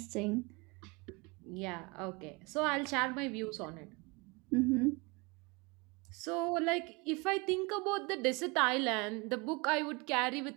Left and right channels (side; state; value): left; quieter; 27.7 dB